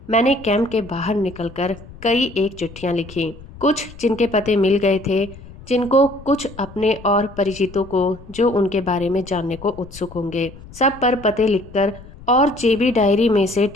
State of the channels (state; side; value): noise; left; rumble, 18 dB below the sound